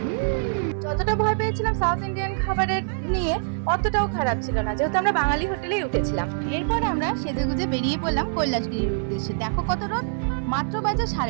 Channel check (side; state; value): left; silent; 62 dB below the other